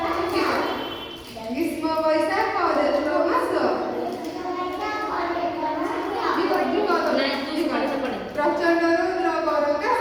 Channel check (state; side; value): identical; both; correlation 1.00